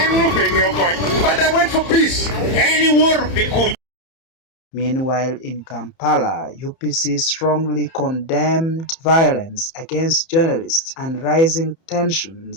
But I went for peace. Meanwhile, in Kampala, UPC strongly condemned violence against journalists and rising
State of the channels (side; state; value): right; late; 30 ms